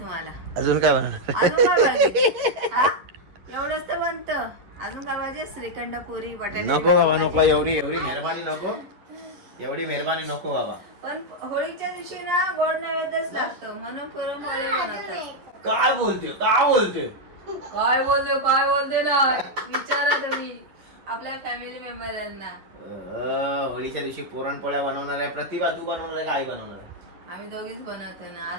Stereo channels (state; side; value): late; left; 11 ms